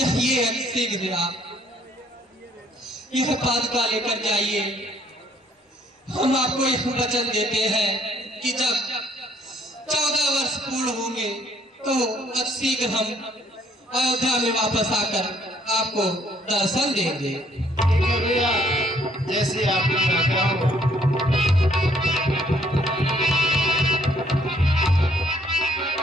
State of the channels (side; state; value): both; normal; correlation 0.64